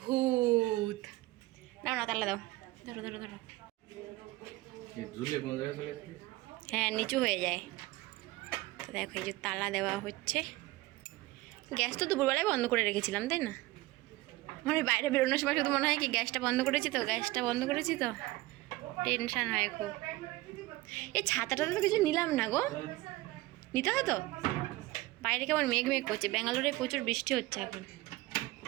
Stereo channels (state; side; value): quieter; left; 19.3 dB